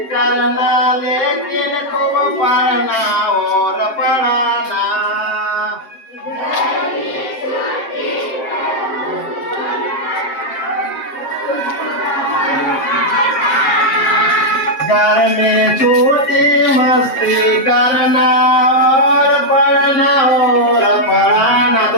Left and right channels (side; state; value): right; late; 7.6 ms